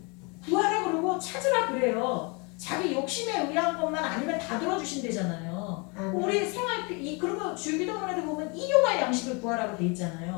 구하라 그러고 찾으라 그래요. 자기 욕심에 의한 것만 아니면 다 들어주신대잖아요. 우리 생활 그리고 주기도문에도 보면 일용할 양식을 구하라고 돼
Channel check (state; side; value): quieter; right; 31.0 dB